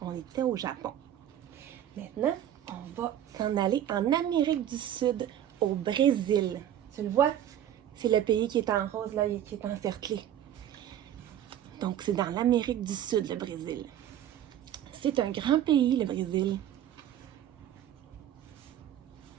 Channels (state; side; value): quieter; left; 10.9 dB